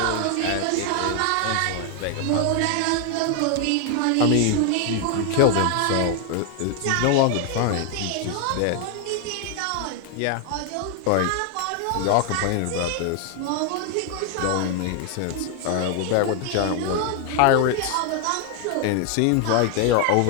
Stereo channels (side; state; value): both; different; correlation 0.00